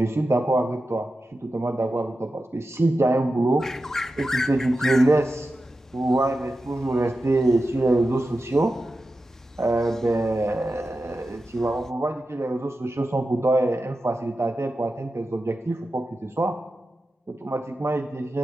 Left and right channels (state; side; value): normal; both; correlation 0.92